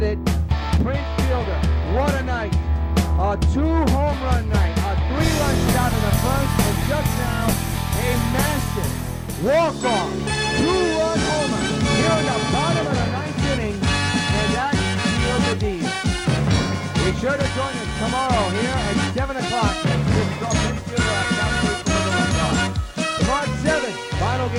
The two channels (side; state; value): both; identical; correlation 1.00